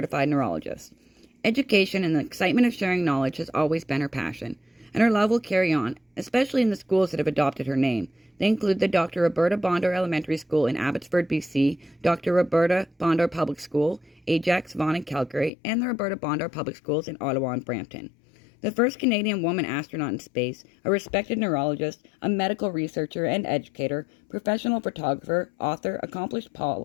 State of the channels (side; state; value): right; drops out; at 15.5 s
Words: neurologist. Education and the excitement of sharing knowledge has always been her passion, and her love will carry on, especially in the schools that have adopted her name. They include the Dr. Roberta Bondar Elementary School in Abbotsford, BC, Dr. Roberta Bondar Public School, Ajax, Vaughan, and Calgary, and the Roberta Bondar Public Schools in Ottawa and Brampton. The first Canadian woman astronaut in space, a respected neurologist, a medical researcher and educator, professional photographer, author, accomplished